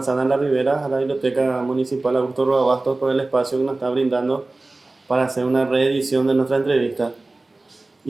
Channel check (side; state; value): left; quieter; 3.1 dB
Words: de la Ribera, a la Biblioteca Municipal Augusto Roa Bastos por el espacio que nos está brindando para hacer una reedición de nuestra entrevista.